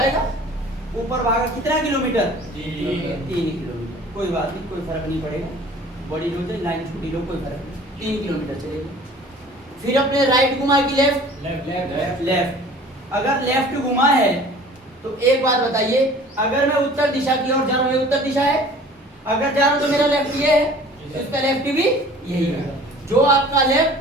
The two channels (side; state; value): both; normal; correlation 0.47